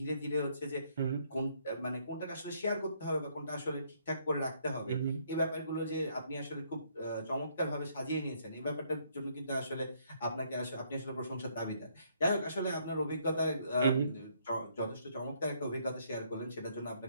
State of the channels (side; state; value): both; inverted; correlation -0.69